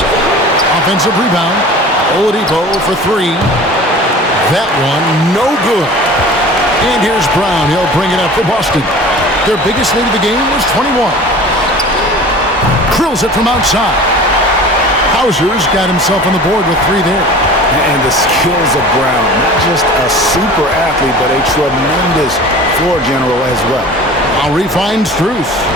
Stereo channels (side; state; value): both; normal; correlation 0.41